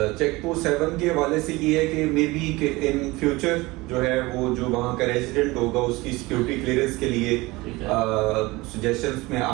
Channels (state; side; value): quieter; left; 21.7 dB